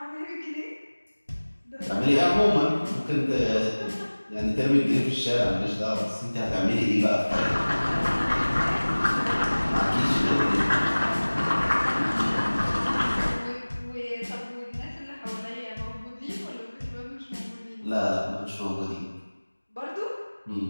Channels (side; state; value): both; inverted; correlation -1.00